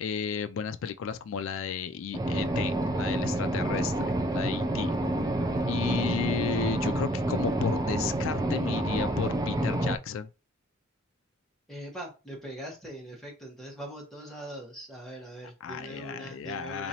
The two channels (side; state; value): both; normal; correlation 0.58